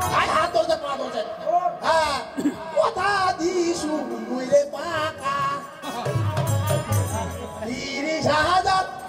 আই হাত ধরে পা ধরে হ্যাঁ কথা দিছু মুইরে পাকা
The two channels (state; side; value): identical; both; correlation 1.00